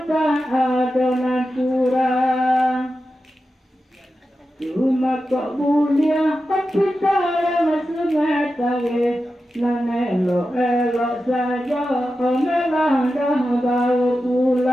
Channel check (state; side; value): normal; both; correlation 0.91